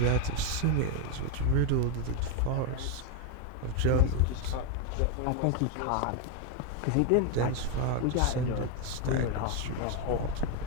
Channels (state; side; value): different; both; correlation 0.02